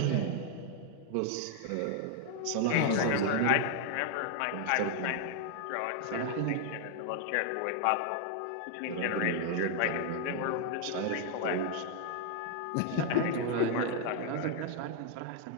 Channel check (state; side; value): different; both; correlation 0.00